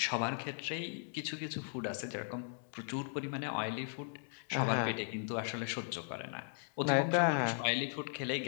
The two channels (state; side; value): silent; right; 53 dB below the other